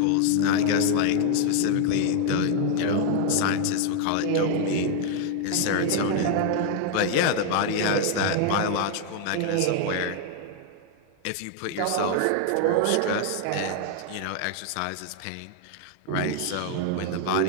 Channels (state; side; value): different; both; correlation 0.00